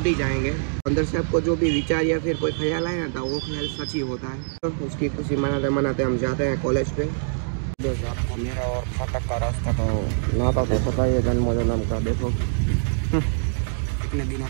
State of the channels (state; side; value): silent; left; digital silence